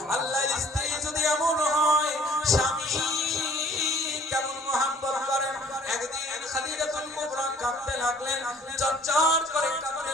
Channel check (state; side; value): normal; both; correlation 0.54